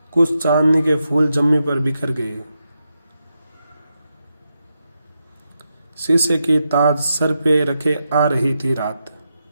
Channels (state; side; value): inverted; both; correlation -0.86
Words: कुछ चांदनी के फूल जम्मी पर बिखर गए। शीशे की ताज सर पे रखे आ रही थी रात।